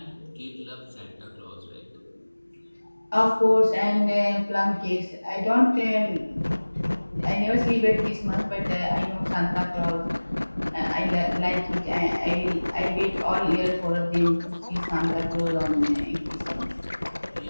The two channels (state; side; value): inverted; both; correlation -1.00